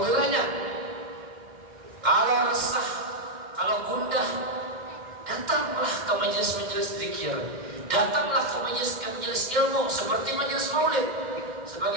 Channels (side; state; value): left; late; 2.1 ms